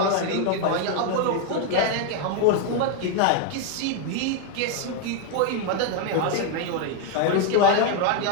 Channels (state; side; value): different; both; correlation 0.01